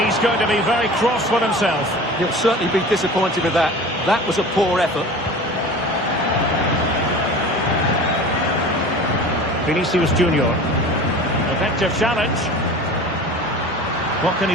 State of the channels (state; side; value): normal; both; correlation 0.38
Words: he's going to be very cross with himself. He'll certainly be disappointed with that. That was a poor effort. Vinicius Junior. Effective challenge. What can